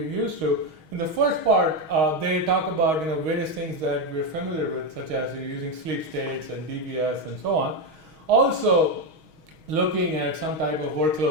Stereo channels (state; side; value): late; left; 6.4 ms